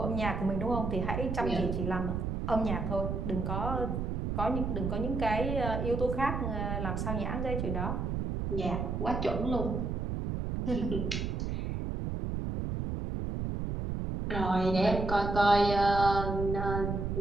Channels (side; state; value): right; noise; rumble, 2 dB below the sound